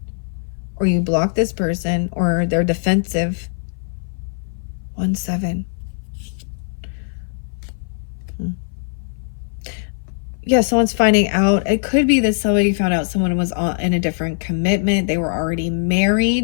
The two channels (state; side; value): silent; right; 59 dB below the other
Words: or you blocked this person, or they're defensive. 1-7. Yeah, someone's finding out. It could be that somebody found out someone was in a different commitment. They were already